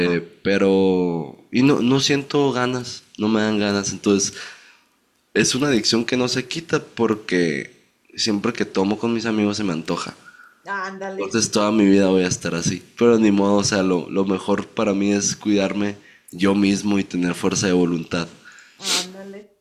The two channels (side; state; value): both; identical; correlation 1.00